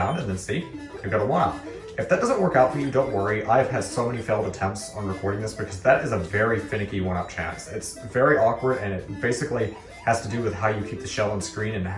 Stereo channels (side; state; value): both; identical; correlation 1.00